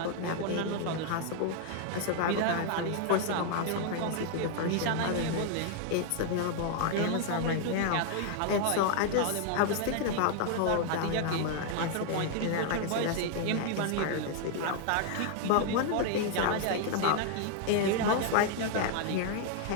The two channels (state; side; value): different; both; correlation 0.00